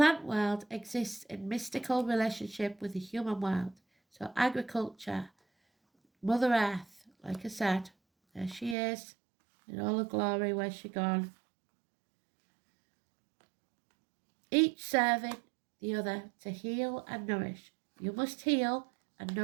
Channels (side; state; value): left; drops out; at 8.8 s